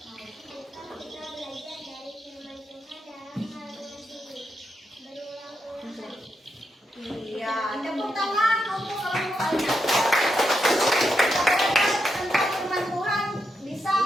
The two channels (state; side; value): normal; both; correlation 0.83